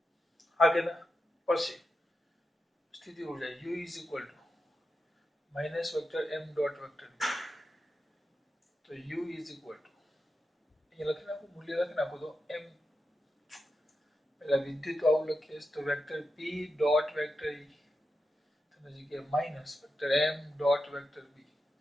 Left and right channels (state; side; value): normal; both; correlation 0.88